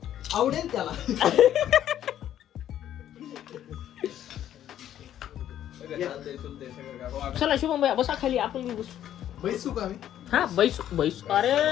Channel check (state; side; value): quieter; right; 11.2 dB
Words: आवडेल त्याला. चला शुभम भैया बसा खाली. आपण बी बसू. बैसू का मी? हा बैसू बैसू.